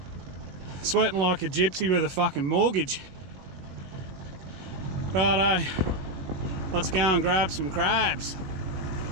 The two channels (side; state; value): left; late; 21 ms